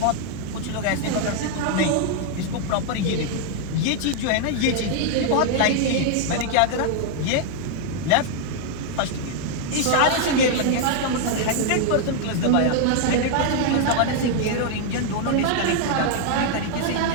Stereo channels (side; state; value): both; different; correlation 0.00